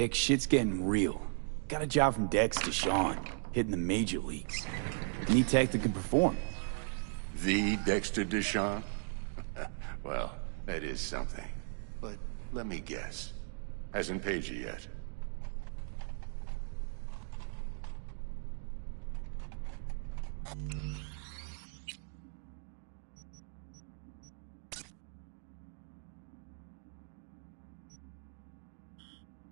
shit's getting real. Got a job from Dex to Sean, hitting the major leagues. Need tech that can perform. The Dexter Deshawn? Well, that is something. But let me guess. Hasn't paid you yet.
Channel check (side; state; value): left; silent; 53 dB below the other